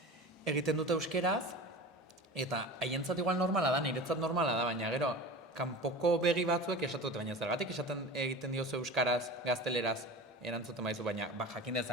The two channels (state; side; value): normal; both; correlation 0.33